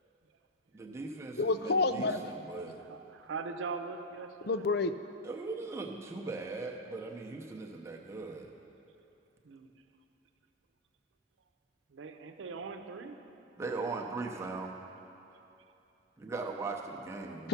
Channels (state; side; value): normal; both; correlation 0.01